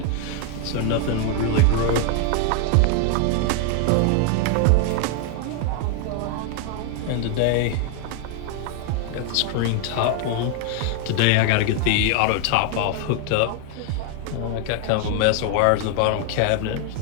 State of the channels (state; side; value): different; both; correlation 0.00